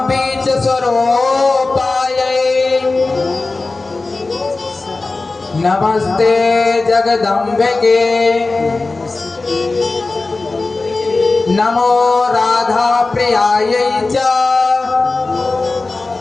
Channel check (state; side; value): quieter; right; 3.5 dB